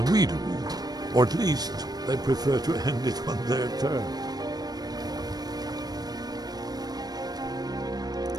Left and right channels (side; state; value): left; late; 0.19 ms